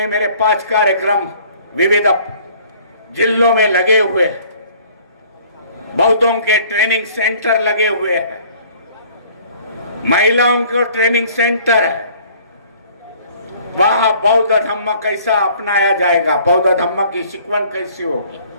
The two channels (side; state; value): both; inverted; correlation -0.55